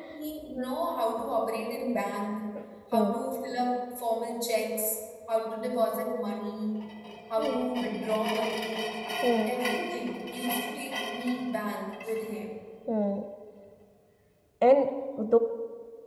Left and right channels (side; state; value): both; identical; correlation 1.00